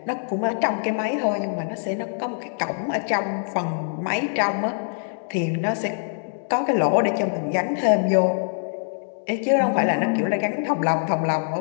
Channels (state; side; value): silent; right; digital silence